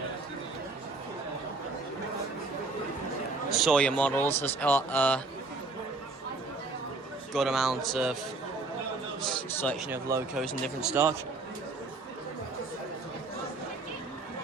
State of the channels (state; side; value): quieter; left; 3.4 dB